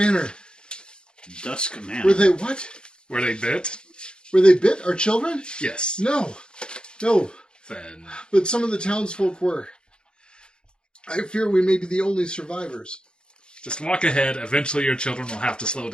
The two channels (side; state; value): right; late; 0.050 ms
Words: Dusk Man. Were they what? Were they bit? Were they bit? Our children? Yes. No. Then But some of the townsfolk were. I fear we may be the only survivors. just walk ahead. Eventually your children will have to slow